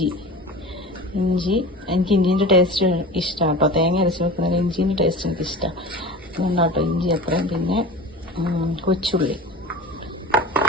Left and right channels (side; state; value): both; normal; correlation 0.35